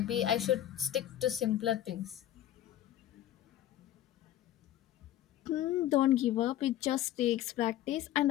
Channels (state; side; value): quieter; right; 12.7 dB